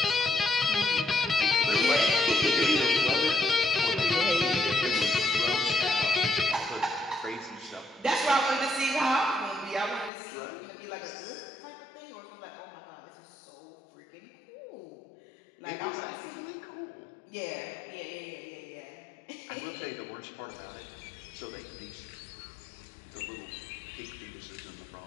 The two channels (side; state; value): right; drops out; at 10.1 s